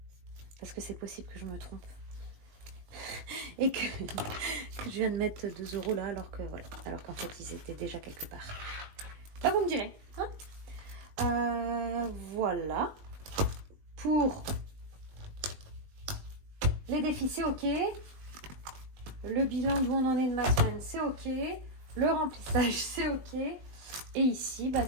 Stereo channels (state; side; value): late; left; 20 ms